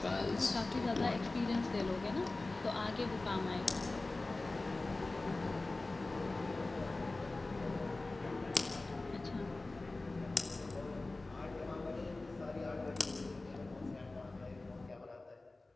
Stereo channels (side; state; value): right; quieter; 3.1 dB